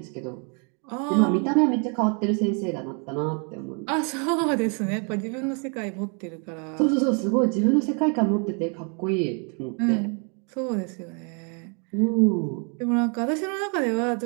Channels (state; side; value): quieter; left; 38.1 dB